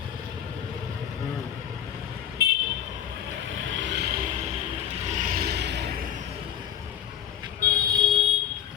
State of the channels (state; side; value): quieter; right; 10.3 dB